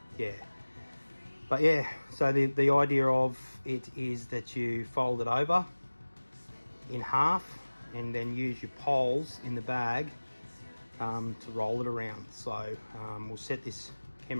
yeah, but yeah, so the idea of it is that you fold it over in half and then use your poles in the bag to roll it around. So we'll set this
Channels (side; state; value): both; inverted; correlation -1.00